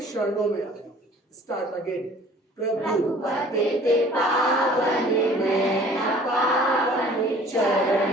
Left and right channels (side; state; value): both; normal; correlation 0.51